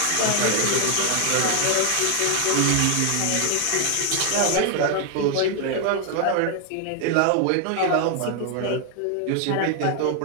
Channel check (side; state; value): both; different; correlation 0.00